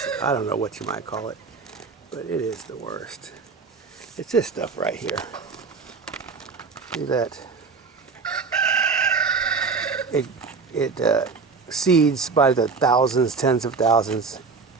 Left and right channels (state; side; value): quieter; left; 4.7 dB